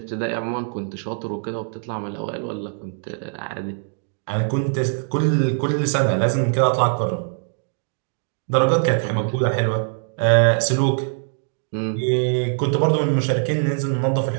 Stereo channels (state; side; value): silent; left; digital silence